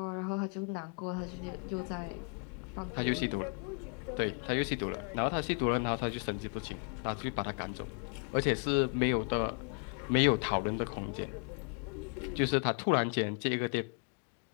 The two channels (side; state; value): right; quieter; 39.2 dB